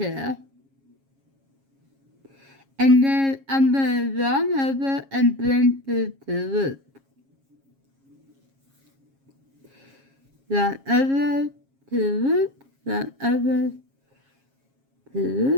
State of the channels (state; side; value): late; left; 7.4 ms